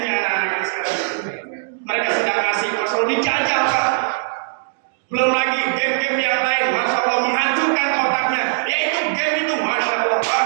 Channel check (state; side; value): silent; left; digital silence